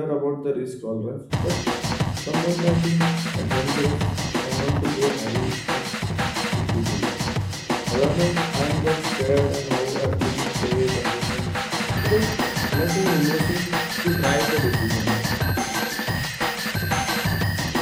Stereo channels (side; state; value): both; identical; correlation 1.00